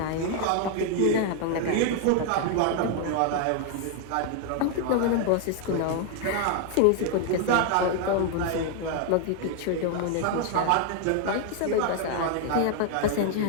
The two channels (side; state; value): both; different; correlation 0.01